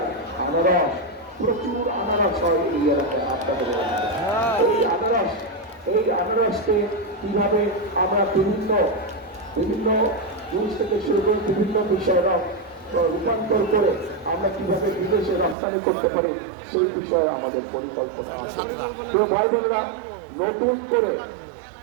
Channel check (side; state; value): left; drops out; at 15.6 s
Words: আনারস, প্রচুর আনারস হয় এই এলাকায়। আপনাদের এই আনারসকে কিভাবে আমরা বিভিন্ন জিনিস থেকে শুরু করে বিভিন্ন বিষয়ে রূপান্তর করে আমরা কিভাবে বিদেশে রপ্তানি করতে পারি, সেই বিষয়ে আমাদের পরিকল্পনা আছে। ভাই বোনেরা,